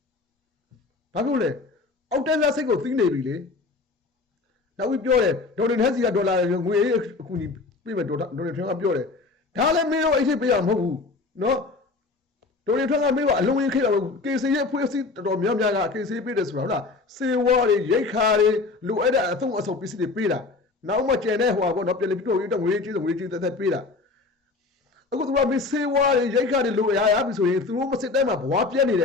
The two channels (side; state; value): right; quieter; 3.8 dB